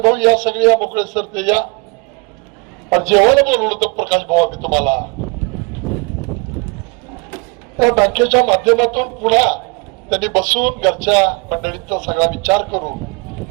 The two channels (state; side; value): quieter; left; 31.0 dB